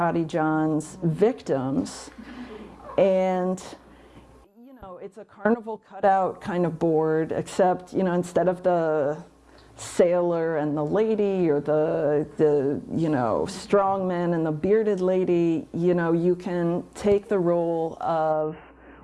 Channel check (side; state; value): both; identical; correlation 1.00